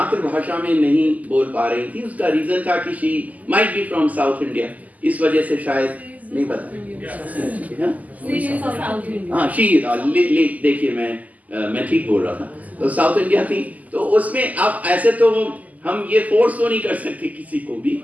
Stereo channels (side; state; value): left; late; 0.077 ms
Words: में नहीं बोल पा रही थी। उसका रीजन था कि she might be from south India, इस वजह से शायद नहीं पता। हाँ, शी देखिए मैं ठीक बोल रहा था, तो साउथ इंडिया थी, तो उसमें आप ऐसे तो हम ये फोर्स तो नहीं कर सकते किसी को भी,